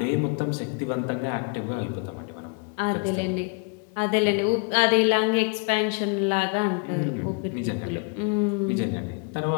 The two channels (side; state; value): right; quieter; 34.8 dB